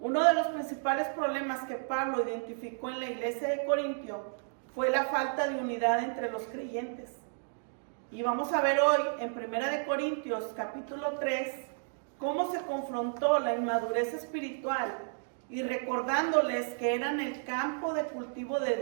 de los principales problemas que Pablo identificó en la iglesia de Corintio fue la falta de unidad entre los creyentes. Y vamos a ver hoy en 1 de Corintios capítulo 3 cómo se confrontó la inmadurez espiritual y recordándoles que eran el campo de cultivo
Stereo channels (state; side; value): silent; left; digital silence